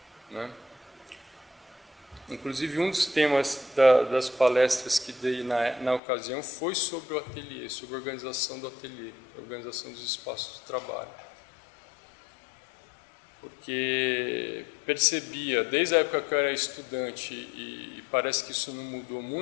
né? Inclusive, um dos temas das palestras que dei na ocasião foi sobre o ateliê, sobre a organização do ateliê, a organização dos espaços de trabalho. Porque percebia, desde a época que eu era estudante, e parece que isso não mudou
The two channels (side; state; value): right; drops out; at 6.0 s